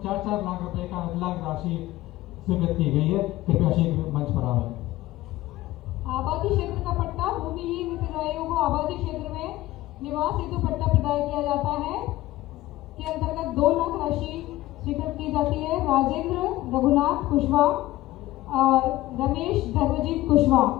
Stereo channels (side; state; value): right; quieter; 16.8 dB